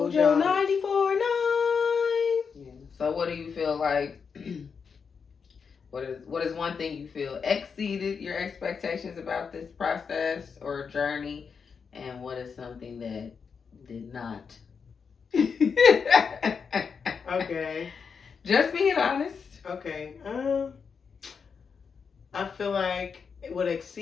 your 94.9. Yeah. So what do you feel like, what is one thing you feel exceeded your expectations about this process or journey? And what is something that did not? Okay. Just being honest. Okay. I feel like what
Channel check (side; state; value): right; quieter; 5.9 dB